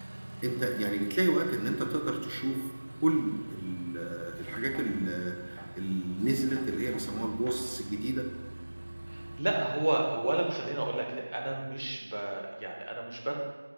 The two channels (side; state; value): both; inverted; correlation -1.00